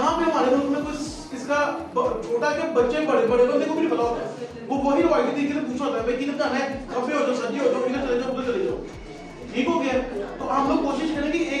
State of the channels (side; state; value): both; identical; correlation 1.00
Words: پہ ہمارے ملک میں کچھ اس کا چھوٹا کہ بچے بڑے بندے کو بھی پتا ہوتا ہے, وہ وہی روایتی طریقے سے پوچھا ہوتا ہے بھائی کدھر جانا ہے, کھبے ہو جاؤ سجے ہو جاؤ, ادھر چلے جاؤ ادھر چلے جاؤ, ٹھیک ہو گیا. تو ہم لوگ کوشش کریں کہ